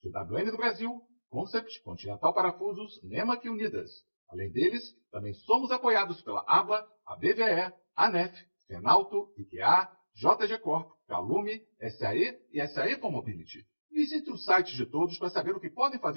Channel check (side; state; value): both; inverted; correlation -1.00